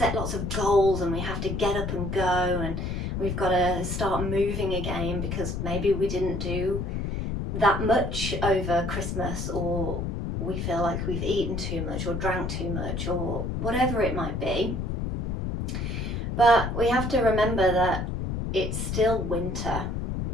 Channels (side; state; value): left; noise; rumble, 2 dB below the sound